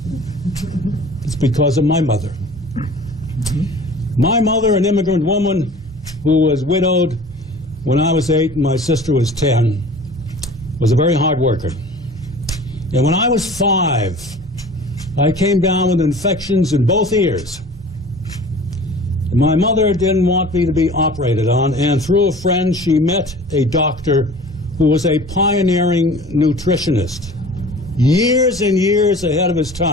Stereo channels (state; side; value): normal; both; correlation 0.43